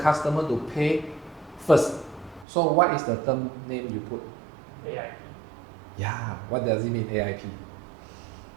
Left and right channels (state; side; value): drops out; left; at 2.5 s